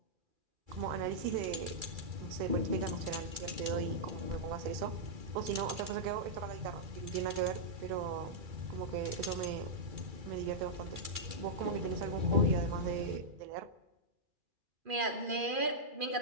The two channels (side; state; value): left; late; 2.3 ms